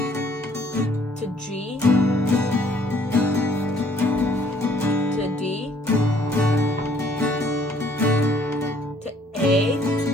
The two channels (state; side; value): normal; both; correlation 0.61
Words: to G, to D, to A,